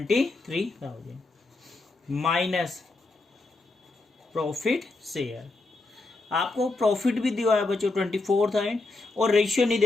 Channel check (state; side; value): quieter; right; 3.3 dB